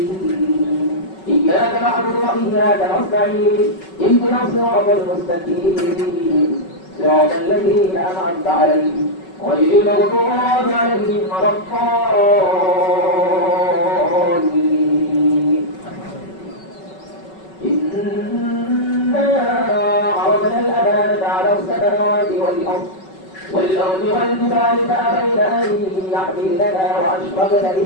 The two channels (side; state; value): right; late; 5.3 ms